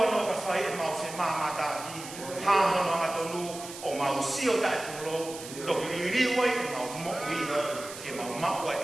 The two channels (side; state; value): right; noise; hiss, 12 dB below the sound